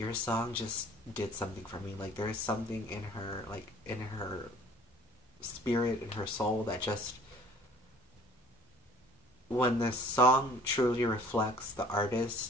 song just did something for me. Like, there is something in her, like, in her spirit, in her soul, that just, when the song truly reflects the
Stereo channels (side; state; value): both; normal; correlation 0.51